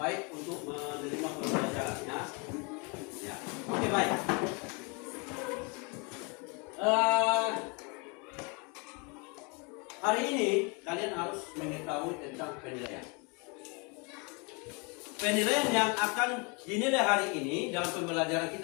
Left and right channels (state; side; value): quieter; right; 31.2 dB